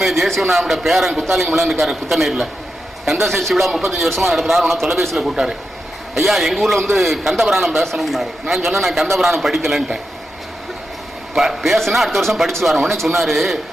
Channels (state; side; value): normal; both; correlation 0.88